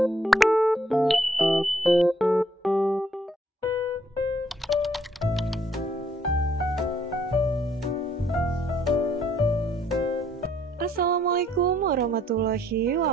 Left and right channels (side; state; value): both; normal; correlation 0.67